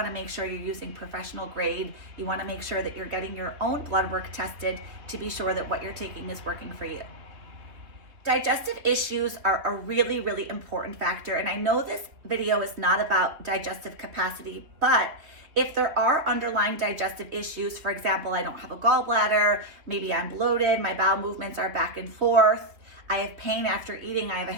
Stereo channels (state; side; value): late; left; 3.2 ms